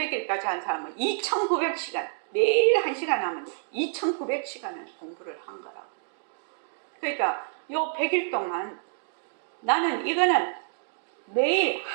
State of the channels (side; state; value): left; silent; digital silence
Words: 한 사람은 2,900시간, 매일 1시간 하면 2,900시간을 공부를 한 거라고. 그러니까 요 100일 동안 나는 이거는 매일